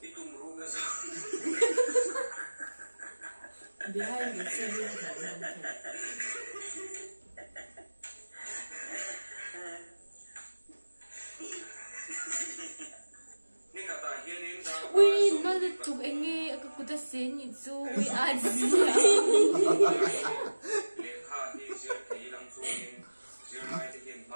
itu merugas. Behind the scene. Ui, nó chụp anh nghe cái cụ ta xén như chú ui ai gì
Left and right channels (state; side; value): inverted; both; correlation -1.00